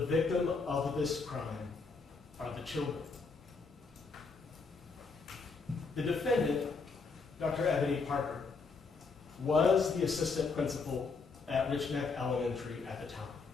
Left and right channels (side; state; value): right; quieter; 4.5 dB